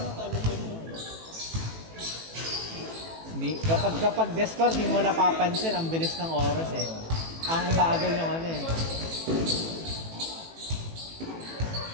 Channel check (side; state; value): left; late; 18 ms